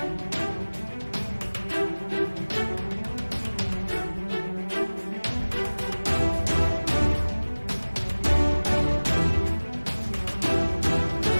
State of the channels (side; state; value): both; inverted; correlation -1.00